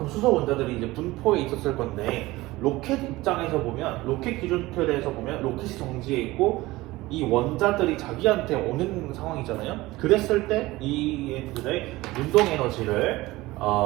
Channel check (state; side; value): quieter; left; 19.2 dB